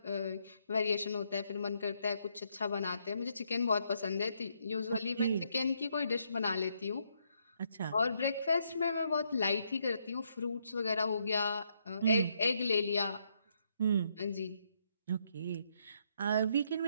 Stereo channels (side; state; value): both; inverted; correlation -0.75